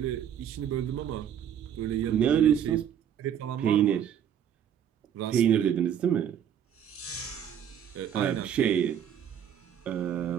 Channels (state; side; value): quieter; left; 9.2 dB